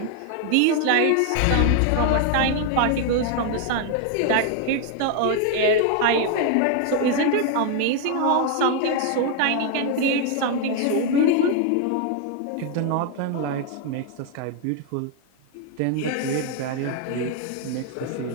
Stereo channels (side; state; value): both; different; correlation 0.00